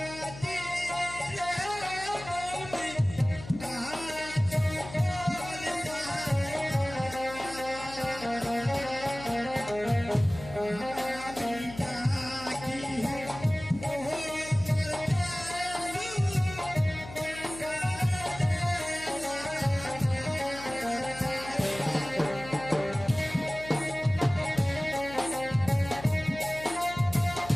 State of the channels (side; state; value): left; noise; hum, 14 dB below the sound